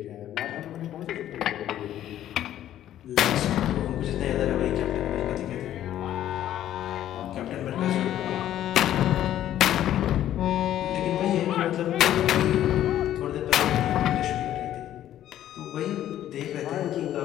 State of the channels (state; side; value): quieter; right; 12.1 dB